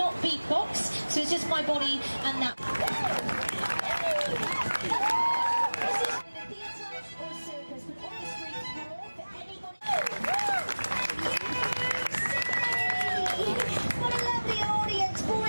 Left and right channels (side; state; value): both; inverted; correlation -1.00